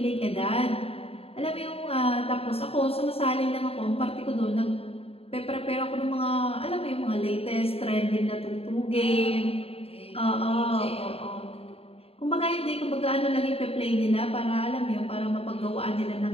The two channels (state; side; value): late; right; 0.28 ms